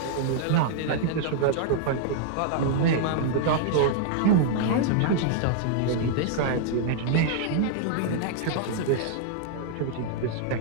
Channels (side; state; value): both; different; correlation -0.01